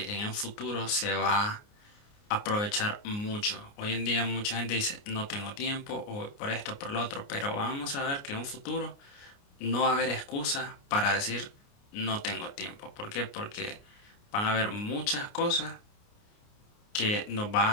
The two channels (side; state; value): right; late; 29 ms